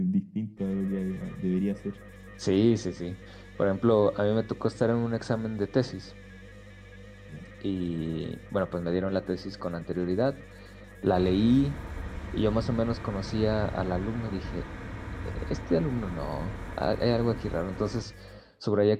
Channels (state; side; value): identical; both; correlation 1.00